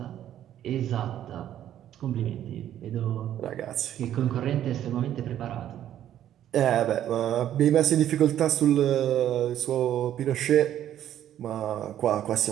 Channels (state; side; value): quieter; left; 11.3 dB